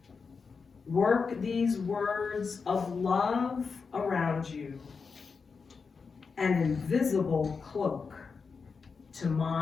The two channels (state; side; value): quieter; right; 5.2 dB